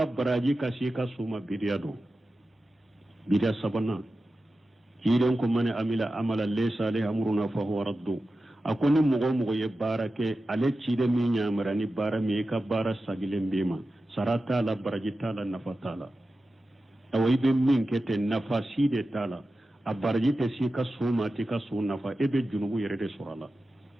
baraji kasika suma bidiado bidia sabana hidan ko mane amila amala laysa alayhi amruna fa huwa raddu akoni mugo ye barake ale cide mi nyamara ni bara mi ka bara sagilen bima sarata la baraji tala nafatala awai be min kete nafasi de tala a baraji te sika suma te ka suna fa ebe junubu yere de surala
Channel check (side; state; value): both; normal; correlation 0.93